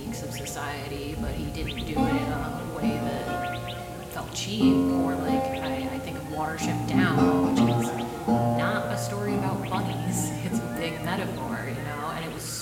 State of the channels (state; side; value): identical; both; correlation 1.00